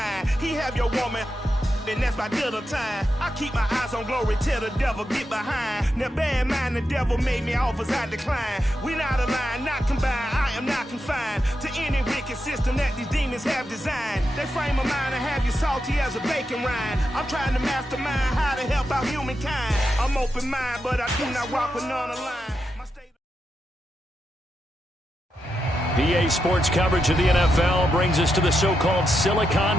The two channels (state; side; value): normal; both; correlation 0.86